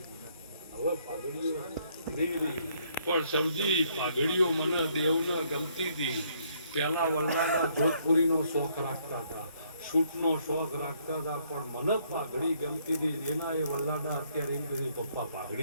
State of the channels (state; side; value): inverted; both; correlation -0.69